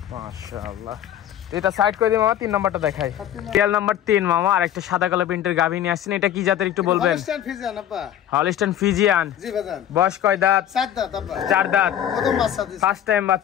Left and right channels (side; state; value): right; quieter; 10.8 dB